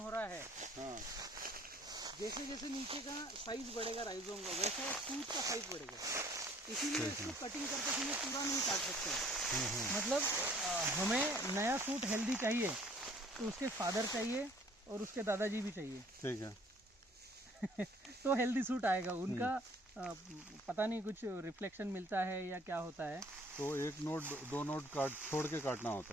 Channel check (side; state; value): both; normal; correlation 0.56